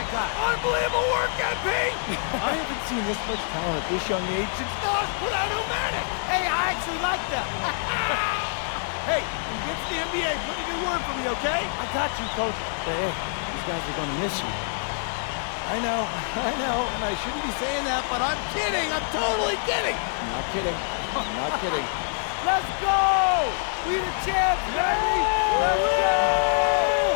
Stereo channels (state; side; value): silent; right; 61 dB below the other